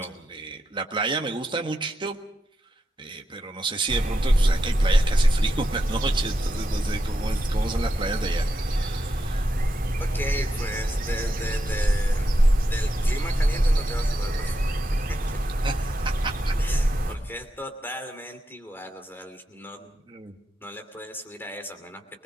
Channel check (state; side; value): normal; both; correlation 0.86